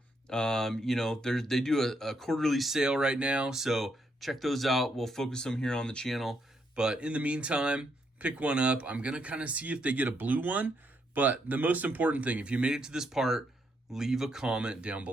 You know, they do a quarterly sale right now. So check those out. We'll focus them here on the channel. But in the meantime, pick one up. I'm going to kind of see if they get a blue one. But the most important thing, if you made it to this part, leave a comment down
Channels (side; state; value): both; normal; correlation 0.76